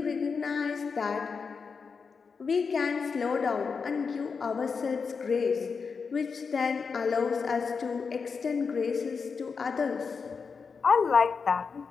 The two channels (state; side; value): quieter; right; 5.4 dB